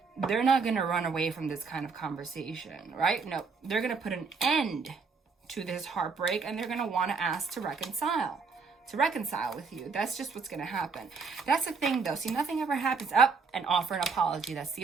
they're not going to run away from this kind of conversation, right? No, they're going to put an end to this heartbreak, and they're going to want to ask to reconcile with you. That's just what's going to happen. That's the thing, though. See, nothing ever happens up and offer an apology. That's the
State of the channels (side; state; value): left; quieter; 5.0 dB